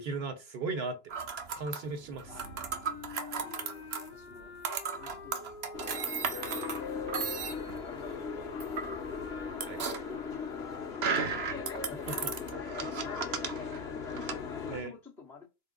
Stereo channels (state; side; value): late; left; 2.9 ms